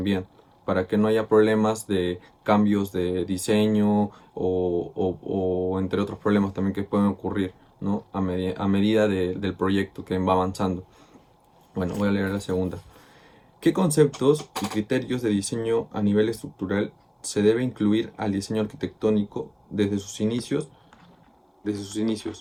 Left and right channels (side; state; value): both; identical; correlation 1.00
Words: para que no haya problemas de cambios de diseño o entre otros problemas también que pueden ocurrir, ¿no? A medida del proyecto que va avanzando. Bueno, voy a leer la segunda. ¿Qué conceptos y criterios de diseño a nivel estructural se debe incluir al diseño arquitectónico desde sus inicios?